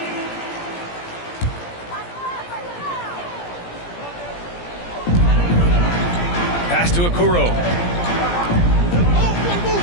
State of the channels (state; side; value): late; right; 17 ms